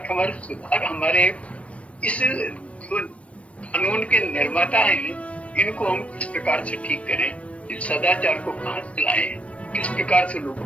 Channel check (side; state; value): right; late; 0.063 ms